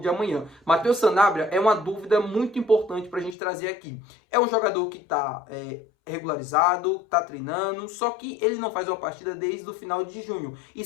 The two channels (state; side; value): drops out; right; at 3.4 s